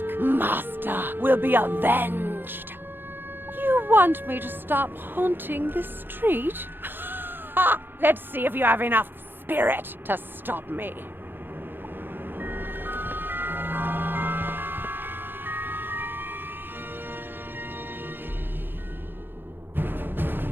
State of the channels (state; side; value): late; left; 0.099 ms